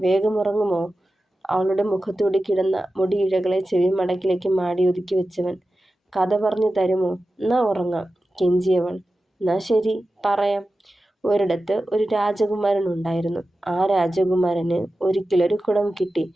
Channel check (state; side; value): normal; both; correlation 0.94